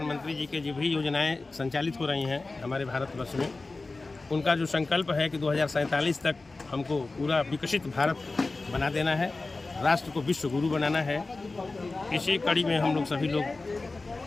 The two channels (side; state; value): right; quieter; 3.5 dB